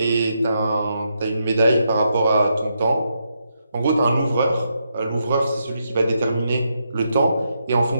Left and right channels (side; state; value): both; inverted; correlation -0.81